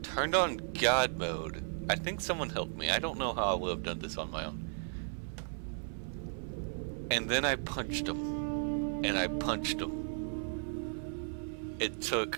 turned on God mode. I think someone helped me. I don't know how I would have done this on my own. And then I punched him. And I punched him. It took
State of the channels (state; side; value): silent; left; 54 dB below the other